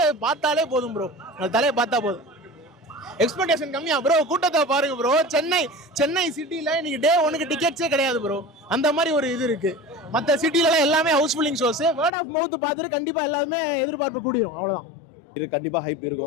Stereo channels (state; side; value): drops out; right; at 12.1 s